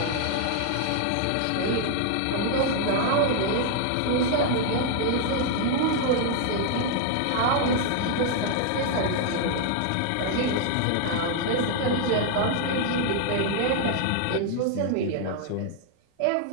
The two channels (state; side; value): different; both; correlation 0.00